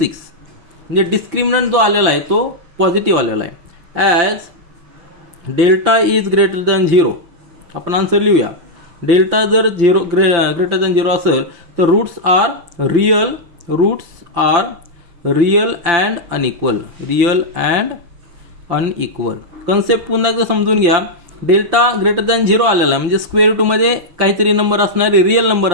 म्हणजे डिस्क्रिमिनंट जो आलेला आहे तो पॉझिटिव्ह आलेला आहे. As delta is greater than 0 आपण आन्सर लिहूया. डेल्टा जर ग्रेटर दॅन 0 असेल तर roots are real and unequal. Concept पुन्हा एकदा समजून घ्या. डेल्टा ग्रेटर दॅन 0 आलेला आहे म्हणजे स्क्वेअर रूटमध्ये काहीतरी नंबर असणारे रिअल नंबर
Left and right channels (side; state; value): left; late; 5.8 ms